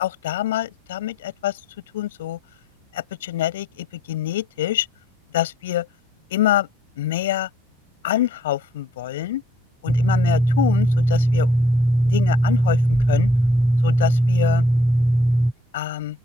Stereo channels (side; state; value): both; normal; correlation 0.62